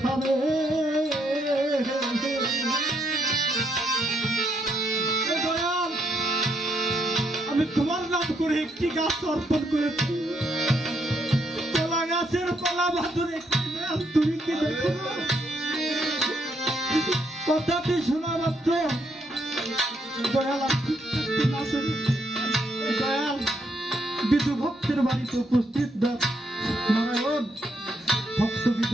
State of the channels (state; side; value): normal; both; correlation 0.75